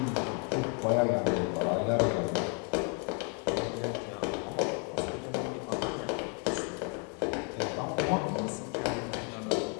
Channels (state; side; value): quieter; right; 38.6 dB